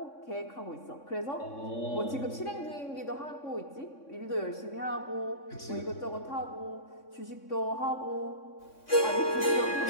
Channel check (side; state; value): right; late; 3.6 ms